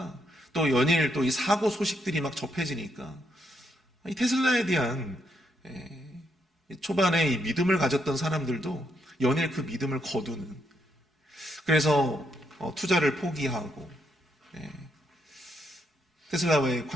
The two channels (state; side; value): normal; both; correlation 0.77